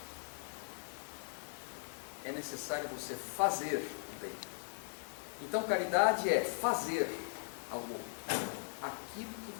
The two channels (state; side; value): silent; right; digital silence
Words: é necessário você fazer o bem. Então caridade é fazer algo, aquilo que